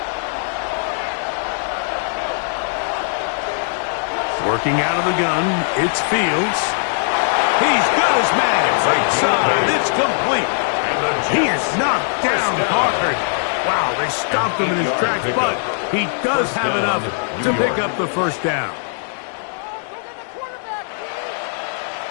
Working out of the gun, it's Fields. He's got his man. Right side, it's complete. He is knocked down hard. Wow, they stopped him in his tracks, but he does have enough to pick up the first down.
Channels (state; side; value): silent; right; 66 dB below the other